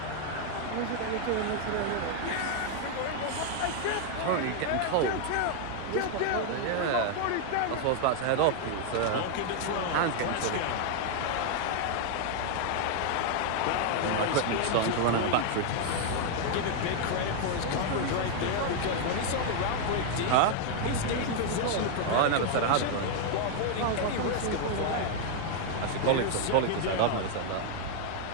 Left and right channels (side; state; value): both; different; correlation 0.00